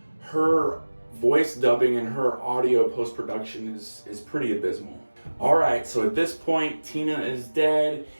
Her voice dubbing and her audio post-production is pretty abysmal. Alright, so at this point, Tina is dead,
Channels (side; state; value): both; inverted; correlation -1.00